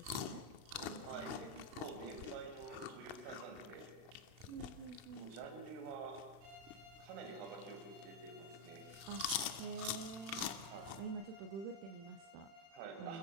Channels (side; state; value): left; late; 36 ms